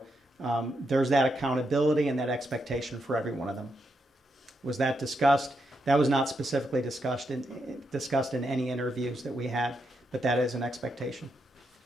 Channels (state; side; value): normal; both; correlation 0.82